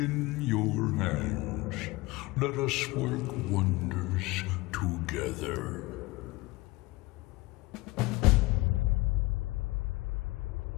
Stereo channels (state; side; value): quieter; right; 21.3 dB